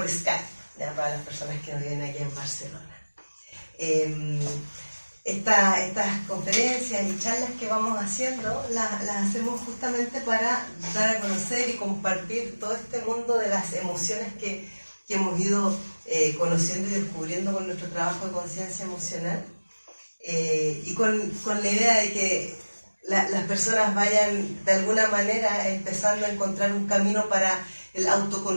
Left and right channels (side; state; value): both; inverted; correlation -1.00